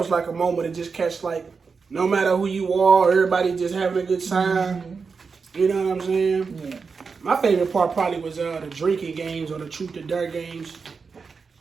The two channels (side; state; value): left; quieter; 5.1 dB